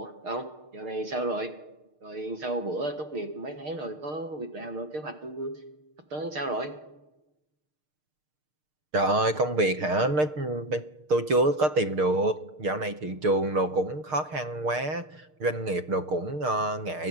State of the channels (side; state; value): left; late; 6.6 ms